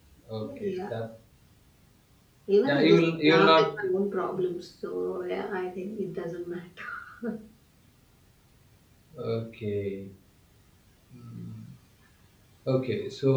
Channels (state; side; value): identical; both; correlation 1.00